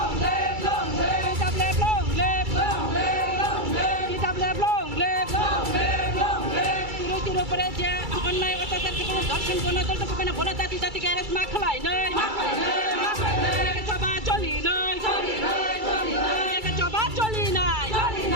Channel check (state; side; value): late; left; 2.3 ms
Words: live long live TWF long live long live long live TWF long live long live long live Tiro Praja online অত্যাচার কে দর্শন কোন দল তো কেন বলা জাতি জাতি কে রেস মাখলাই নয় কে সবা চলি নয় কে সবা চলি নয়